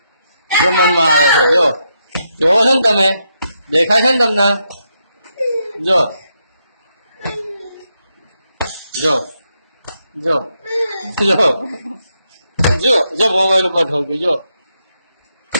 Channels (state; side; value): inverted; both; correlation -0.81